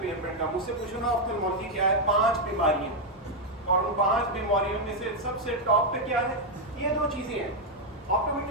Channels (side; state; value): both; normal; correlation 0.01